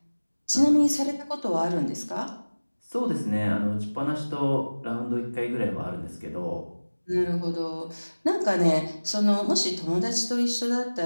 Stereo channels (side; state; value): both; inverted; correlation -1.00